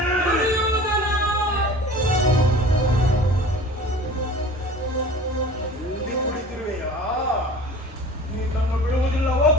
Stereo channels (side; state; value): both; normal; correlation 0.42